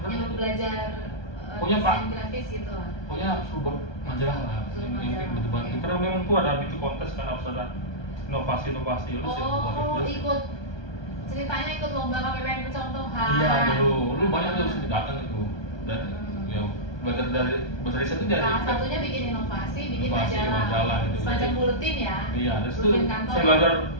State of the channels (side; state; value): right; late; 1.2 ms